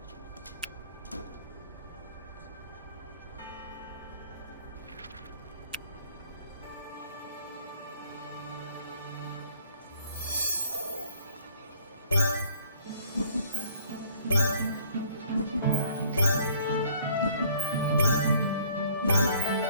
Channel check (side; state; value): both; inverted; correlation -0.57